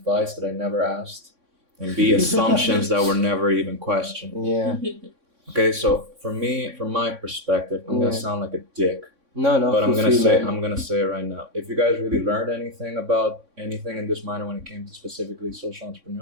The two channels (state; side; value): late; left; 3.6 ms